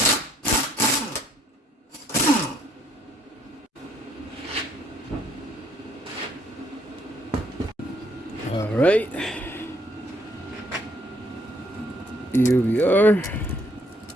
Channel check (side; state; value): both; normal; correlation 0.66